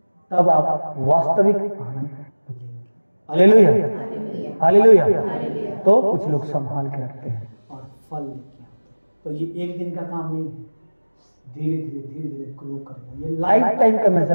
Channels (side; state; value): both; inverted; correlation -1.00